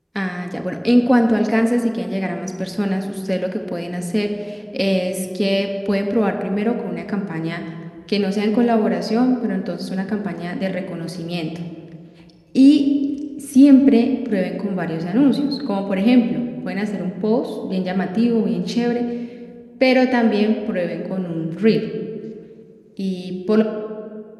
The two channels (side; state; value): both; identical; correlation 1.00